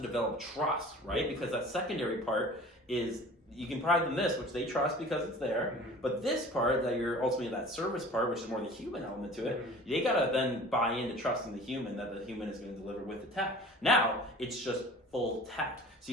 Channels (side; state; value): both; normal; correlation 0.43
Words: trust, right? Because that secondary part is you can provide them this, which they trust because it's there. Mm-hmm. But this part that you're ultimately that service part, which is more the human element to it, mm-hmm. they got to then buy into trusting the human that the human is going to deliver with the tech. Now it's just full tech. So